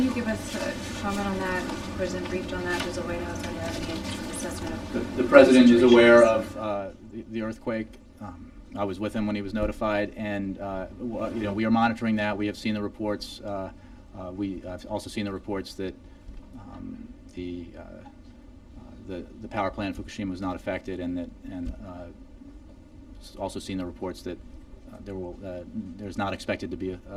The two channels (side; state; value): both; identical; correlation 1.00